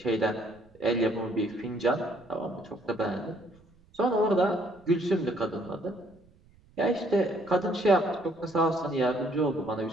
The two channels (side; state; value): right; noise; rumble, 29 dB below the sound